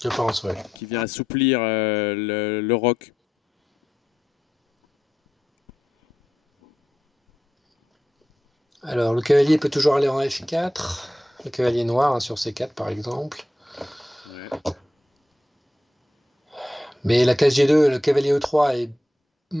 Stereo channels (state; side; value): normal; both; correlation 0.86